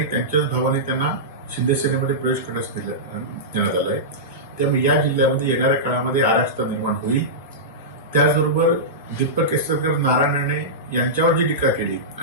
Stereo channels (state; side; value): normal; both; correlation -0.14